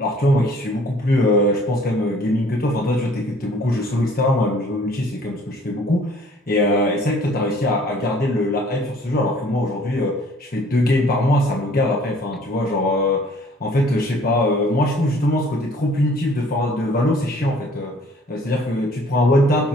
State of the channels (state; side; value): normal; both; correlation 0.55